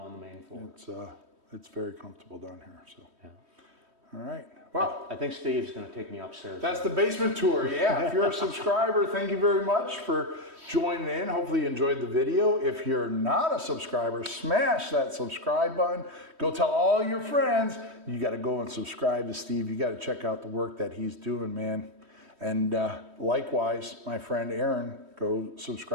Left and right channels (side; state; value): left; late; 3.1 ms